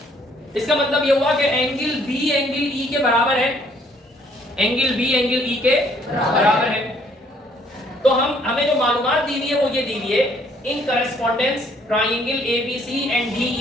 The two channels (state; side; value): normal; both; correlation 0.64